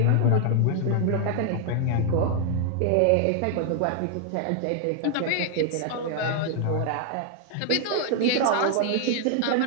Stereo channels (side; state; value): both; different; correlation 0.00